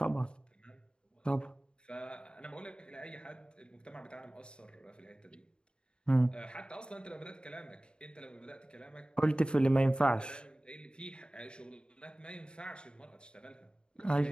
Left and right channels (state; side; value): late; right; 0.051 ms